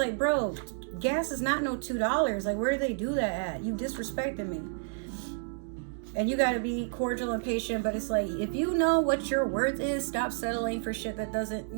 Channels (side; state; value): left; silent; digital silence